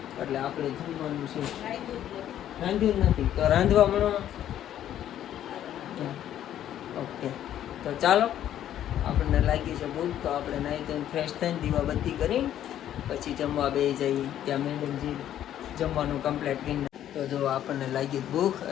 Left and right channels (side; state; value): right; quieter; 11.3 dB